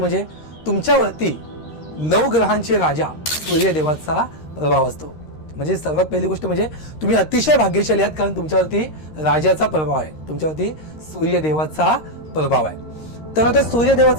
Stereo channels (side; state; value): right; late; 13 ms